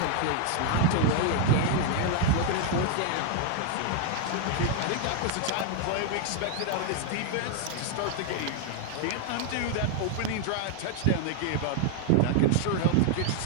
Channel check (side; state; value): both; different; correlation 0.00